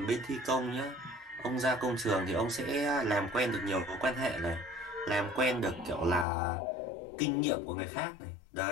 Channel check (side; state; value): right; drops out; at 6.2 s